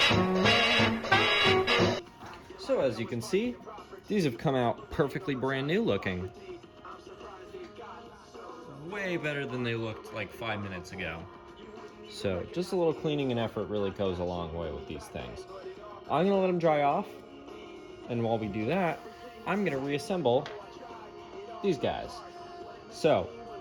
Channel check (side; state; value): both; identical; correlation 1.00